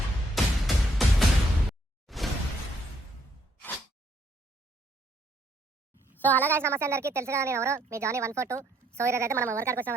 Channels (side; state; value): both; normal; correlation 0.70